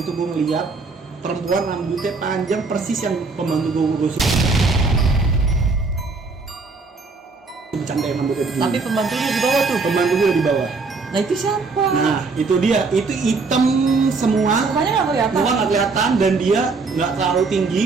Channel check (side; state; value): left; quieter; 4.2 dB